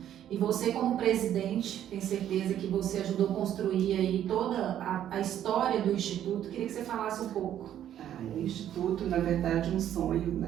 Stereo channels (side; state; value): left; quieter; 10.9 dB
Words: E você como presidente, tenho certeza que você ajudou a construir aí toda a história do Instituto. Queria que você falasse um pouco. O Instituto, na verdade, um sonho